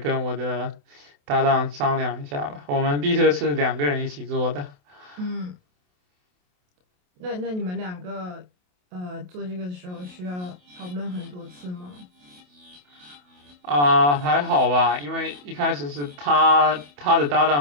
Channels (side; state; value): left; late; 28 ms